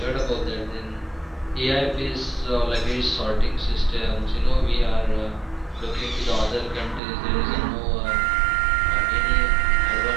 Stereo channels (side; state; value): left; drops out; at 7.0 s